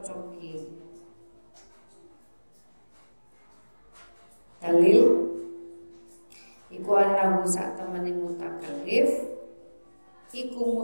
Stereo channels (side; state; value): both; inverted; correlation -1.00